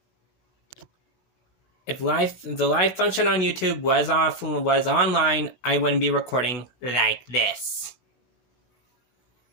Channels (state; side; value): late; right; 16 ms